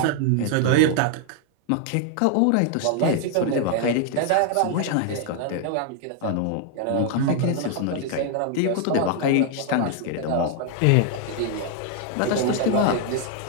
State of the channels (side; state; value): both; different; correlation 0.00